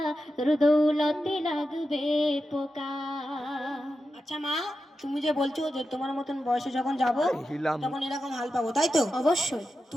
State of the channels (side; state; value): both; normal; correlation 0.90